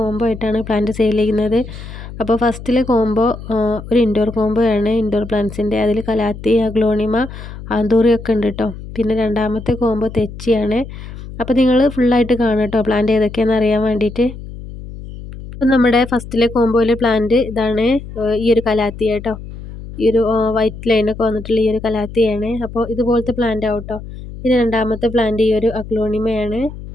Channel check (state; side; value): noise; left; hum, 12 dB below the sound